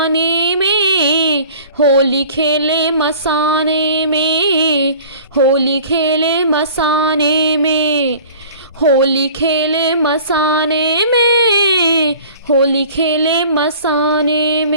में, होली खेले मसाने में, होली खेले मसाने में, होली खेले मसाने में, होली खेले मसाने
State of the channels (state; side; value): inverted; both; correlation -0.46